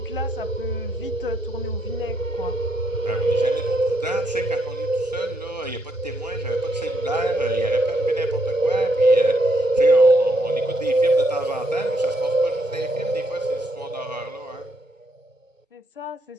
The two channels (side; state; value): both; normal; correlation 0.75